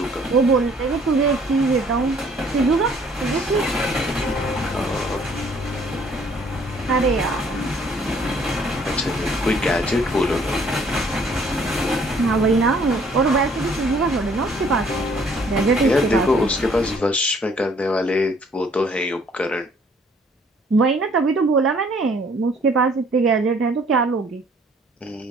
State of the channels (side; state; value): both; normal; correlation 0.60